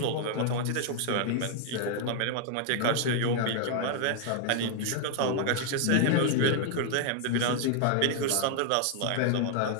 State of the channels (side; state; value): both; different; correlation 0.00